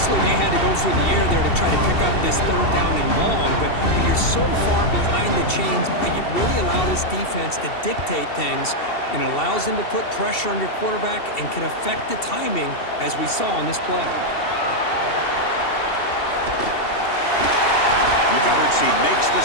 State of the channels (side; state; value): right; late; 2.7 ms